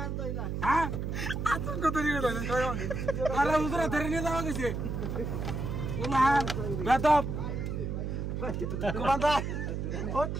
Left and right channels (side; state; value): right; noise; hum, 3 dB below the sound